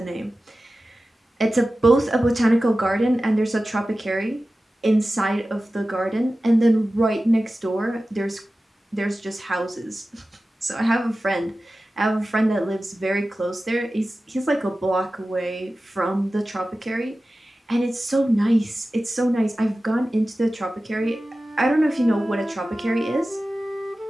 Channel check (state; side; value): normal; both; correlation 0.95